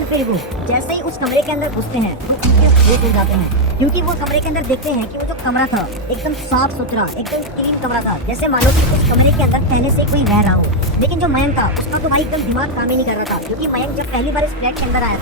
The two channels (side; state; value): both; normal; correlation 0.00